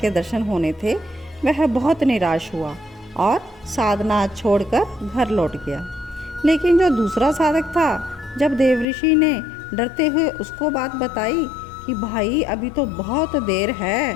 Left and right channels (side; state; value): right; drops out; at 8.8 s